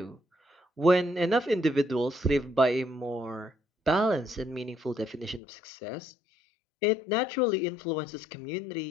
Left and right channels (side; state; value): right; drops out; at 5.4 s